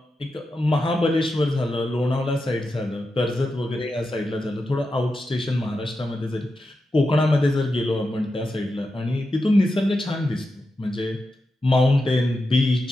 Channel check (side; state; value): both; normal; correlation 0.89